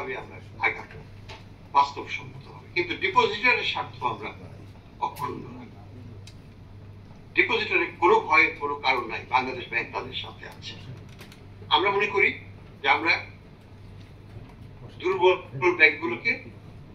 আমরা আগাবো বাস্তবসম্মত হবে। কিন্তু ডিপোজিটরের স্বার্থ আমরা অক্ষুণ্ণ রাখবো। ডিপোজিটরের কোনো ভয়ের কোনো কারণ নাই, বাংলাদেশ ব্যাংক তাদের সাথে আছে। আমরা মনে করি যে আমরা দুর্বল ব্যাংকগুলোকে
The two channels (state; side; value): identical; both; correlation 1.00